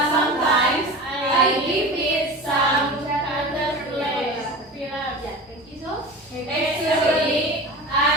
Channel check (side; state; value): both; normal; correlation 0.32